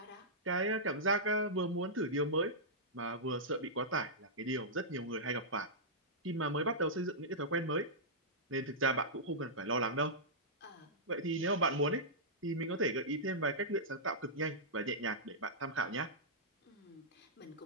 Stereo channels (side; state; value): both; normal; correlation -0.13